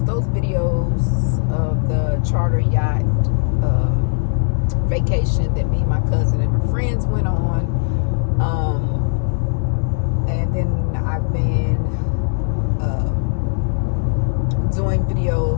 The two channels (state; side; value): silent; right; digital silence